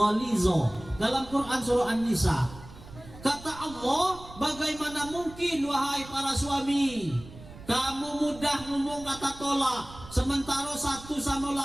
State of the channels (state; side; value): noise; right; rumble, 17 dB below the sound